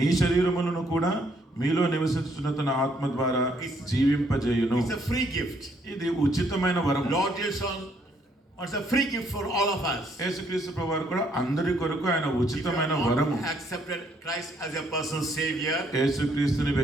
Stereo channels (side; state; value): both; normal; correlation 0.69